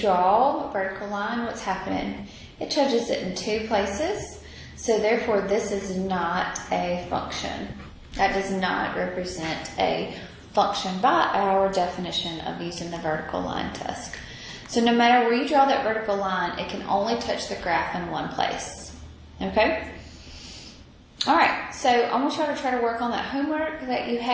a vertical line, what's happening? It touches it in 2 places. So therefore, this is not a function. That does not represent a function by our definition of using the vertical line test. So no matter where you draw that vertical line, it can only touch the graph in one place. Okay? All right, so I want y'all to try to work on that homework that you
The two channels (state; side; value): identical; both; correlation 1.00